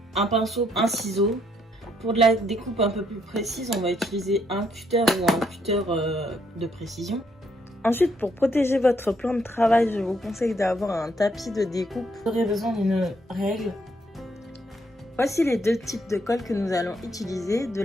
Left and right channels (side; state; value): both; normal; correlation 0.72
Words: un pinceau, un ciseau. Pour de la découpe un peu plus précise, on va utiliser un cutter ou un cutter de précision. Ensuite, pour protéger votre plan de travail, je vous conseille d'avoir un tapis de découpe. Vous aurez besoin d'une règle. Voici les deux types de colle que nous allons utiliser, de